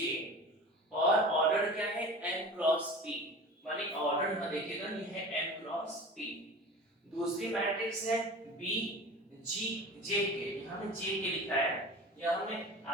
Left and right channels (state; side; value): normal; both; correlation 0.36